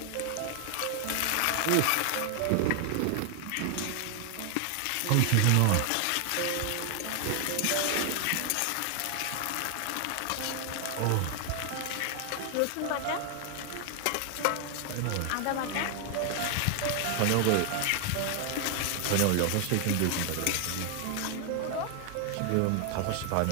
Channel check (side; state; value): both; different; correlation 0.00